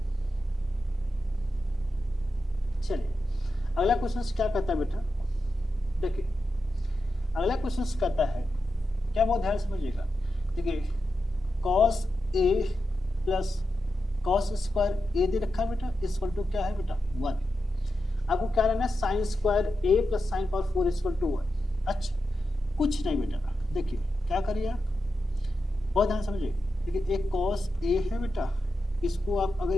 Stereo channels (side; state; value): both; normal; correlation 0.89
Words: चलिए अगला क्वेश्चन क्या कहता है बेटा, देखिए अगला क्वेश्चन कहता है, क्या बहुत ध्यान समझिएगा, देखिए cos a plus cos square a दे रखा है बेटा, इक्वल टू क्या है बेटा 1। आपको क्या लेना है, sine square a plus sine power 4 equal to 1। अच्छा कुछ नहीं बेटा, देखिए क्या करिए आप, बहुत ध्यान समझिए, देखिए एक cos a है बेटा, इसको आप अगर